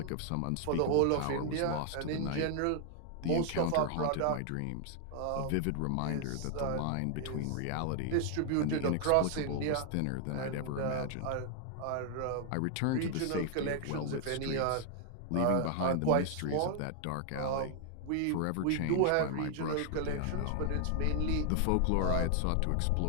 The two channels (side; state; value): both; different; correlation 0.00